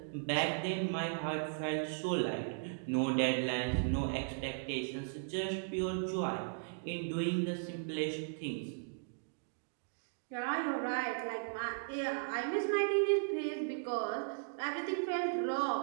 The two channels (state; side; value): silent; left; digital silence